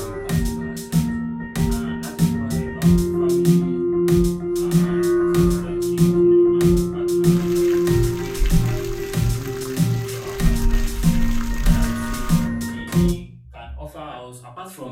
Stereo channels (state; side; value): identical; both; correlation 1.00